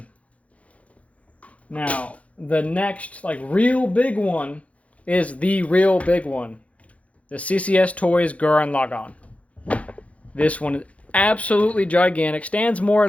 Now, the next, like, real big one is the real big one. The CCS Toys Gurren Lagann. This one is absolutely gigantic. Stands more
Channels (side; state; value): right; late; 0.065 ms